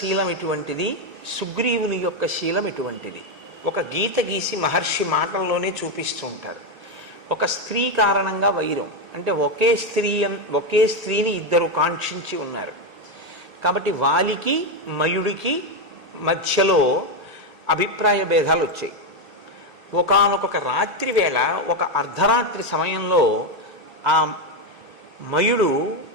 ఎటువంటిది, సుగ్రీవుని యొక్క శీలం ఎటువంటిది? ఒక గీత గీసి మహర్షి మాటల్లోనే చూపిస్తూ ఉంటారు. ఒక స్త్రీ కారణంగా వైరం, అంటే ఒకే స్త్రీని ఇద్దరు కాంక్షించి ఉన్నారు కాబట్టి వాలికి మయుడికి మధ్యలో అభిప్రాయ భేదాలు వచ్చాయి. ఒకానొక రాత్రి వేళ, ఒక అర్ధరాత్రి సమయంలో ఆ మయుడు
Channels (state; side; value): normal; both; correlation 0.07